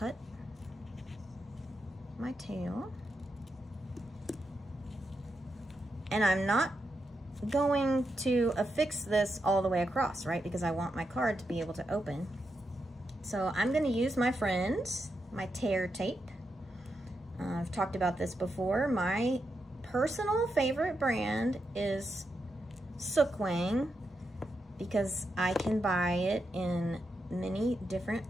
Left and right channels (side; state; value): both; normal; correlation 0.85